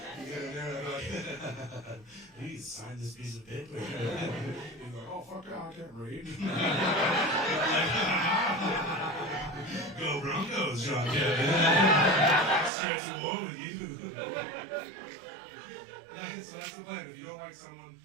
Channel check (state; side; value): drops out; left; at 12.7 s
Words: You get in there and they're like, please sign this piece of paper. He's like, oh fuck yeah, I can't read. Go Broncos, John Kevin. Starts a war with you. So that's the plan. If you don't like someone